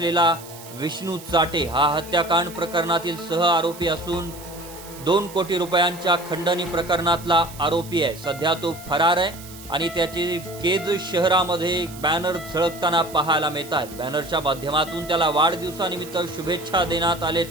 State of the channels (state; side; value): noise; right; hiss, 17 dB below the sound